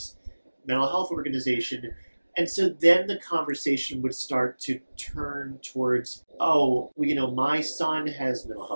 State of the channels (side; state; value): both; inverted; correlation -1.00